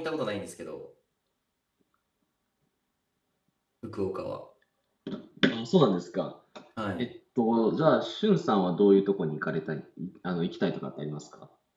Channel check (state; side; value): identical; both; correlation 1.00